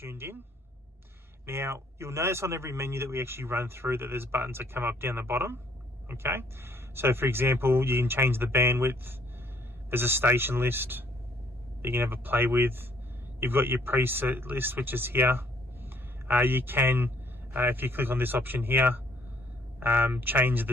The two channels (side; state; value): both; normal; correlation 0.65